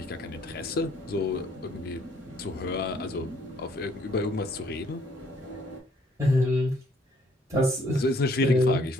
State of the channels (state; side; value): normal; both; correlation 0.64